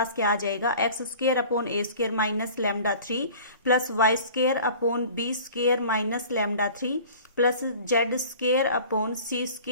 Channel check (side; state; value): both; inverted; correlation -0.44